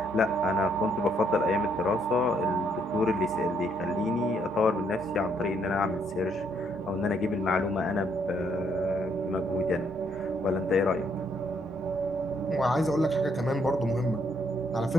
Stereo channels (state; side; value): normal; both; correlation 0.71